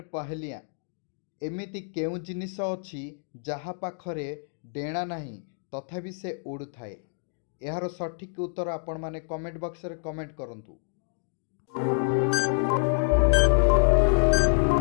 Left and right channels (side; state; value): right; silent; digital silence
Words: पहलिया एमिति केउ जिनिस अछि जहा पाखरे डेणा नाही तथापि से उड़ु थाए। यार सठिक उत्तर आपण माने कमेंट बॉक्स रे कमेंट करंतु।